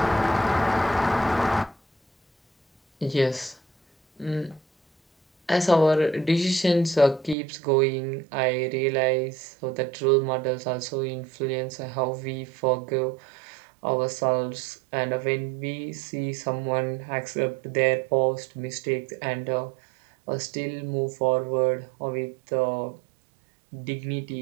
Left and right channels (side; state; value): left; drops out; at 7.4 s